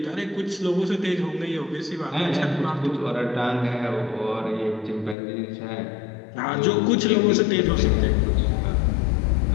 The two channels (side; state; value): right; drops out; at 5.2 s